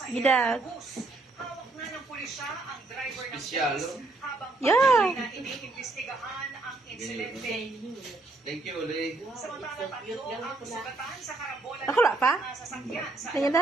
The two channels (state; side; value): quieter; left; 3.1 dB